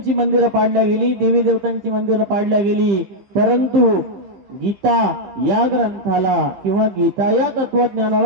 मंदिरं पाडल्या गेली, देवी देवतांची मंदिरं पाडल्या गेली. परंतु गीता या ग्रंथाला किंवा गीता या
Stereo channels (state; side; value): late; left; 15 ms